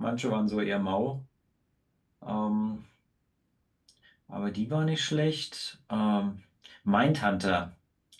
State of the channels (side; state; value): both; identical; correlation 1.00